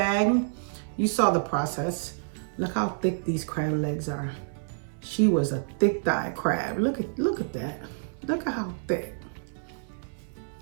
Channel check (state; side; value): silent; left; 59 dB below the other